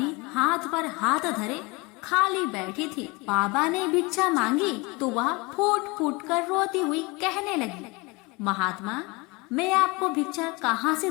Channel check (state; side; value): quieter; right; 26.0 dB